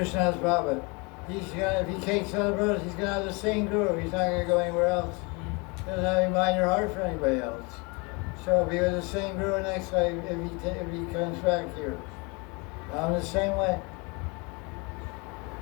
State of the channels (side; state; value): right; quieter; 29.6 dB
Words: Baba. If he takes other brothers, he's going to have the same guru. He's not going to go anywhere else. He doesn't have any mind or heart for anybody else. So be with the same guru next life if he comes back here. I'm the same way.